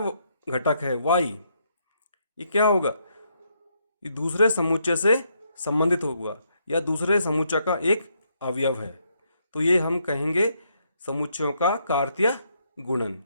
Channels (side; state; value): both; inverted; correlation -0.75